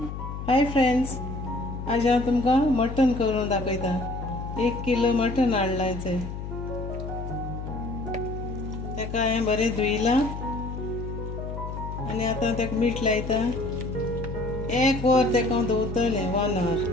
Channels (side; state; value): left; noise; hum, 7 dB below the sound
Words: friends, आज हांव तुमकां मटन करून दाखयता। 1 किलो मटन हाडलायचें, तेका हांवें बरें धुयलां आनी आतां तेका मीठ लायता। 1 वर तेका दवरतलें, 1 hour